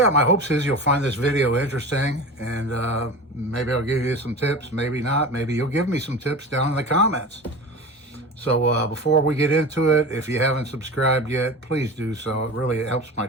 my hopes is you'll find this video interesting, and maybe I'll give you some tips, maybe not. Maybe you'll give me some tips down in the comments. So before we get into it, if you haven't subscribed yet, please do so. It really helps my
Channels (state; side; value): normal; both; correlation 0.32